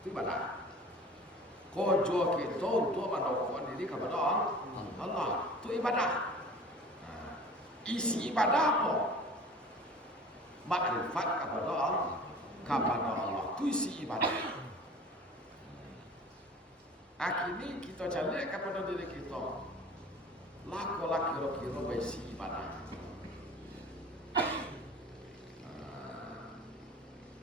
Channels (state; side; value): normal; both; correlation 0.43